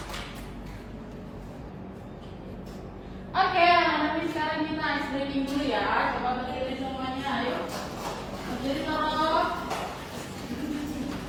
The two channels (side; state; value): both; identical; correlation 1.00